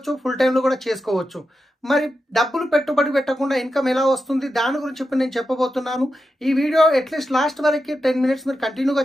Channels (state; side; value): normal; both; correlation 0.89